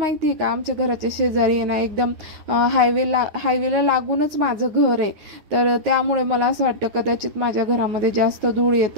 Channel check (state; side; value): late; left; 9.4 ms